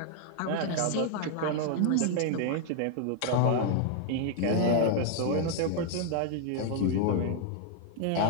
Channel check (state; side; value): different; both; correlation 0.00